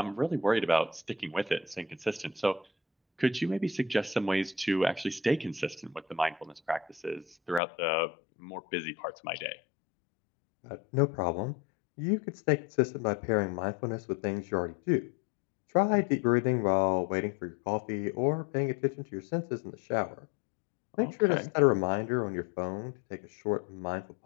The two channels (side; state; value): right; drops out; at 7.6 s